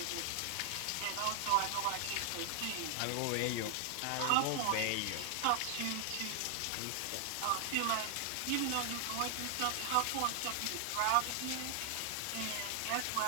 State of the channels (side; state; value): both; different; correlation 0.00